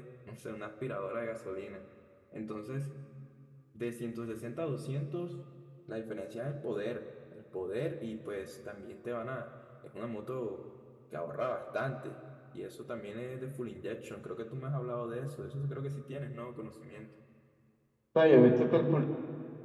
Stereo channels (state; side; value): identical; both; correlation 1.00